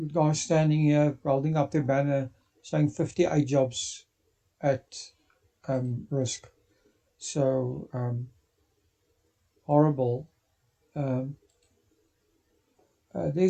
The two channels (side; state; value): both; identical; correlation 1.00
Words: guy standing here holding up the banner saying 58 jobs at risk. So, horrible. Um,